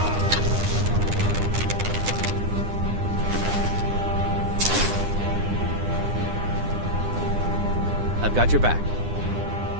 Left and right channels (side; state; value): left; late; 9.8 ms